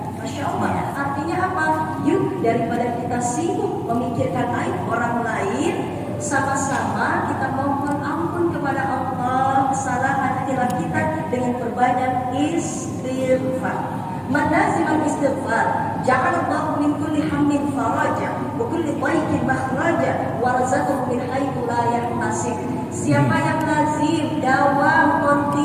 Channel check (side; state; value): both; identical; correlation 1.00